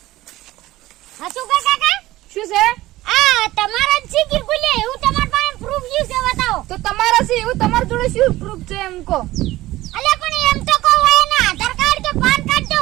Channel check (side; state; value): left; quieter; 16.9 dB